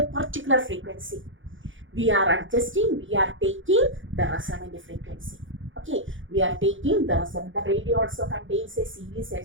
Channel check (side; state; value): left; late; 0.56 ms